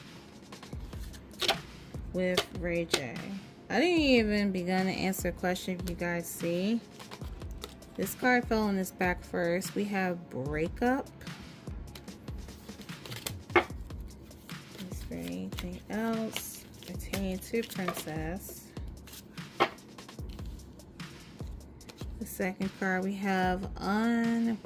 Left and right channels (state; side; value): identical; both; correlation 1.00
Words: with rayj? I didn't even begin to answer a question. If you guys see, this card fell on his back first. We have breakup. Is there anything else pertaining to Princess? The second card we have